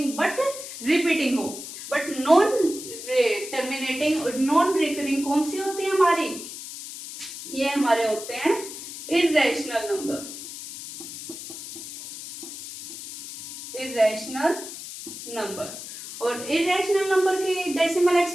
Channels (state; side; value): noise; left; hiss, 11 dB below the sound